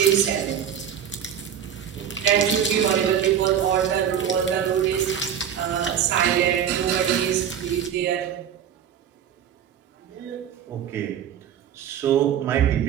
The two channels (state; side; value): quieter; left; 9.0 dB